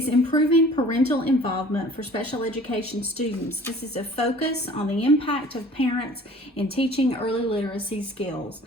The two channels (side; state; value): both; normal; correlation 0.49